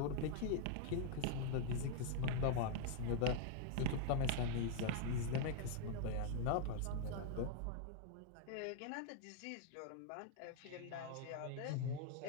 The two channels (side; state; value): both; different; correlation 0.00